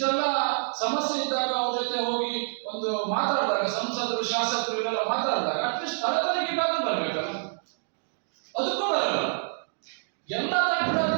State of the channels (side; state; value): left; silent; digital silence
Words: ಸಮಸ್ಯೆ ಇದ್ದಾಗ ಅವ್ರ ಜೊತೆ ಹೋಗಿ ಒಂದು ಮಾತಾಡಿದಾಗ, ಸಂಸದರು ಶಾಸಕರು ಇವೆಲ್ಲ ಮಾತಾಡಿದಾಗ ಅಟ್ಲೀಸ್ಟ್ ಸ್ಥಳ ತನಿಖೆಗಾದ್ರೂ ಬರ್ಬೇಕಲ್ಲ. ಅದಕ್ಕೂ ಬರಲ್ಲ. ಎಲ್ಲ